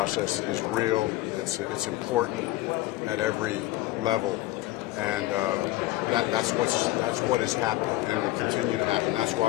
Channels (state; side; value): quieter; right; 17.4 dB